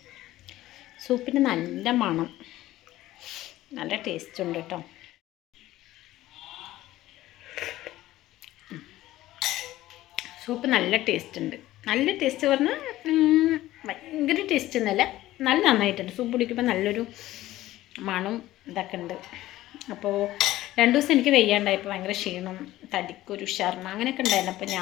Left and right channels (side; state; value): right; quieter; 15.6 dB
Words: സൂപ്പിന് നല്ല മണം, നല്ല ടേസ്റ്റ് ഉണ്ട് കേട്ടോ. സൂപ്പ് നല്ല ടേസ്റ്റ് ഉണ്ട്. നല്ല ടേസ്റ്റ് പറഞ്ഞാൽ ഭയങ്കര ടേസ്റ്റ് ഒന്നുമല്ല, നല്ല നന്നായിട്ടുണ്ട്. സൂപ്പ് കുടിക്കുമ്പോൾ നല്ലൊരു മണം ഇതൊക്കെ ഉണ്ട്. അപ്പോൾ 2 ദിവസം എനിക്ക് വെയ്യാണ്ടായപ്പോൾ ഭയങ്കര ക്ഷീണം, തടിക്കൊരു ഉഷാറിന് അങ്ങനെയൊക്കെ ഉണ്ടായിരുന്നു. അപ്പോൾ